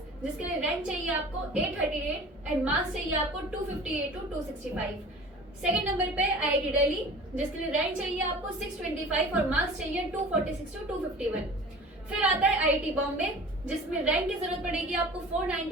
जिसके लिए रैंक चाहिए आपको 838 एंड मार्क्स चाहिए आपको 258 टू 265। सेकेंड नंबर पे आईआईटी दिल्ली, जिसके लिए रैंक चाहिए आपको 625 और मार्क्स चाहिए 246 टू 251। फिर आता है आईआईटी बॉम्बे, जिसमें रैंक की जरूरत पड़ेगी आपको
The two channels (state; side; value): normal; both; correlation 0.41